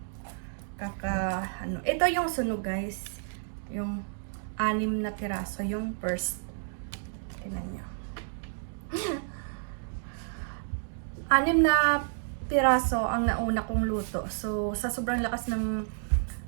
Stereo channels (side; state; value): left; silent; digital silence